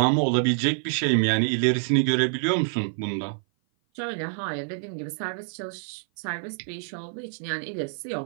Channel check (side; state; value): left; silent; 56 dB below the other